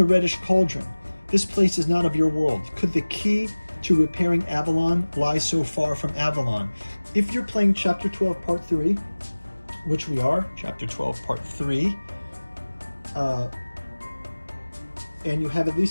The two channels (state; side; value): inverted; both; correlation -1.00